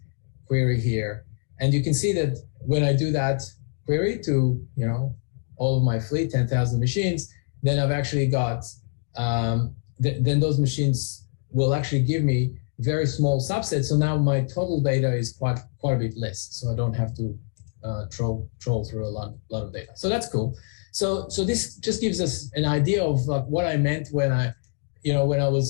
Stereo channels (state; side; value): silent; right; 61 dB below the other